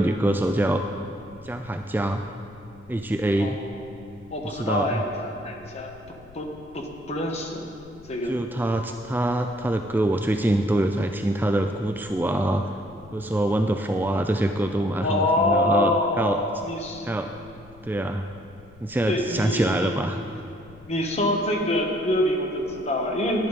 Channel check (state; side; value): noise; left; rumble, 23 dB below the sound